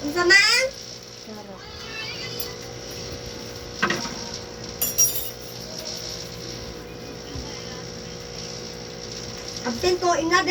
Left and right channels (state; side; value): identical; both; correlation 1.00